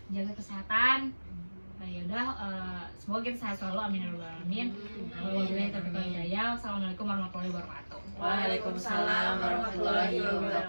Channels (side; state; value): both; inverted; correlation -1.00